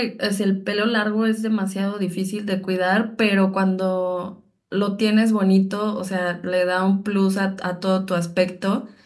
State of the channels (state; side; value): identical; both; correlation 1.00